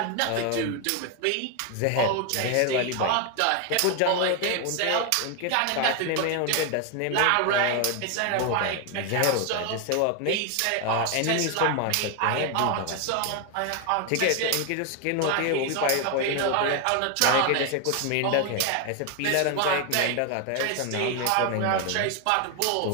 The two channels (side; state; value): both; different; correlation 0.01